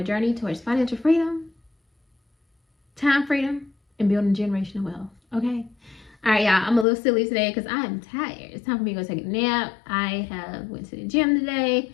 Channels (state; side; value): drops out; right; at 6.9 s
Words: journey towards financial freedom, time freedom, and building generational wealth. Okay. All right, y'all. I'm a little silly today because I am tired. It's time for me to go take a nap. I have went to the gym